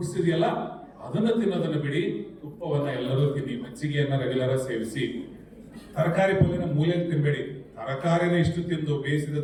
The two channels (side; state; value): both; identical; correlation 1.00